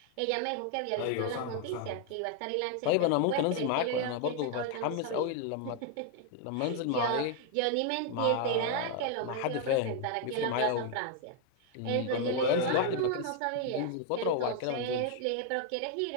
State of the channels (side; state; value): both; different; correlation 0.01